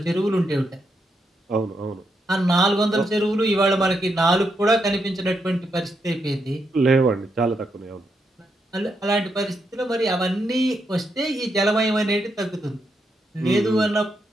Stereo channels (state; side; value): normal; both; correlation 0.81